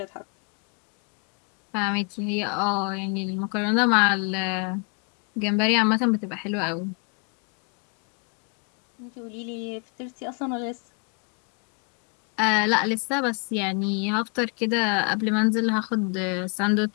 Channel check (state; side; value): quieter; right; 35.8 dB